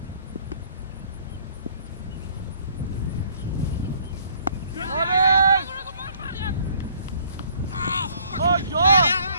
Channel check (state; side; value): inverted; both; correlation -0.60